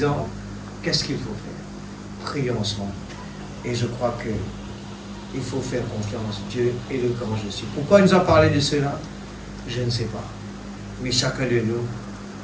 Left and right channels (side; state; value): both; identical; correlation 1.00